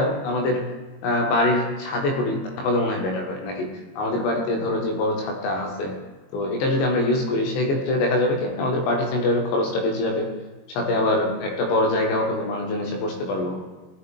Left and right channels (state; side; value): late; right; 22 ms